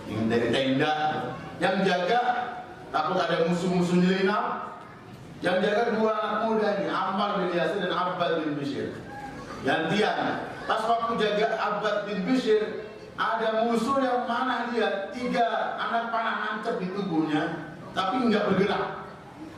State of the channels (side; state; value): both; identical; correlation 1.00